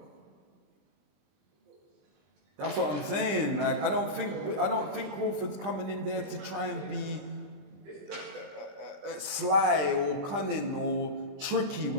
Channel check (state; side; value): late; left; 20 ms